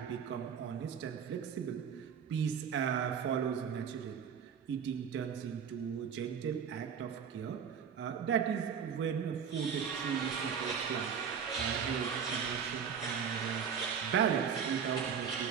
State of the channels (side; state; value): left; quieter; 7.3 dB